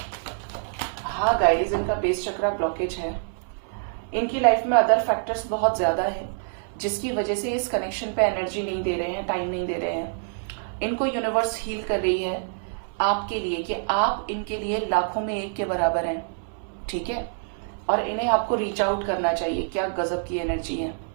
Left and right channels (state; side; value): silent; left; 61 dB below the other